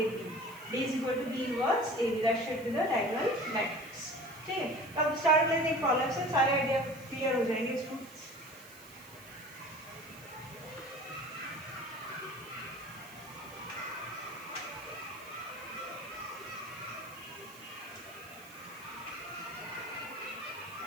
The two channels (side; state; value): right; noise; hiss, 20 dB below the sound